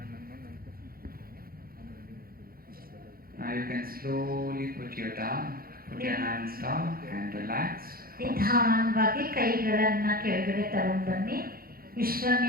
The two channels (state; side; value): late; left; 0.43 ms